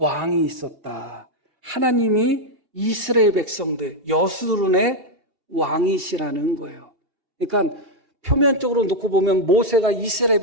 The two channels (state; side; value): late; left; 2.7 ms